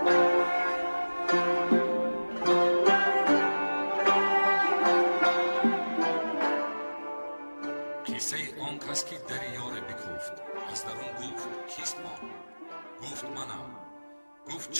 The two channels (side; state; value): both; inverted; correlation -1.00